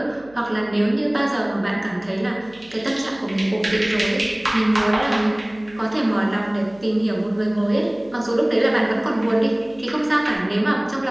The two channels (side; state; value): right; noise; hum, 26 dB below the sound